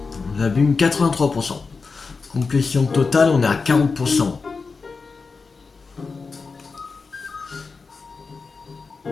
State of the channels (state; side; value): quieter; right; 4.6 dB